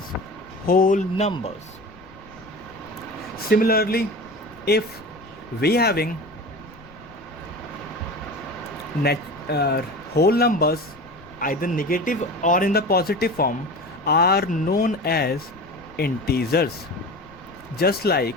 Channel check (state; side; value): noise; left; rumble, 24 dB below the sound